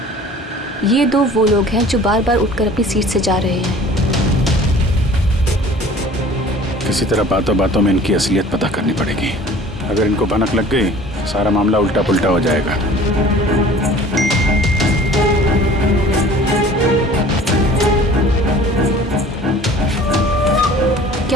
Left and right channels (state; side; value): normal; both; correlation 0.47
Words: ये दो वो लोग हैं जो बार बार उठकर अपनी सीट से जा रहे हैं। किसी तरह बातों बातों में इनकी असलियत पता करनी पड़ेगी। अगर इनको भनक लग गई सारा मामला उल्टा पुल्टा हो जाएगा।